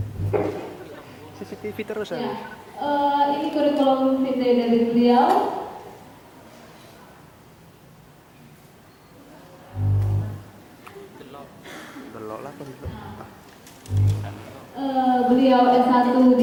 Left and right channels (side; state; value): both; identical; correlation 1.00